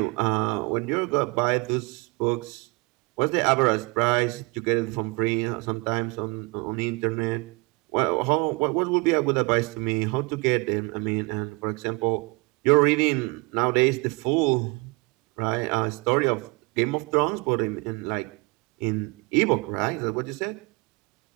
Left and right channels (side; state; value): left; quieter; 29.1 dB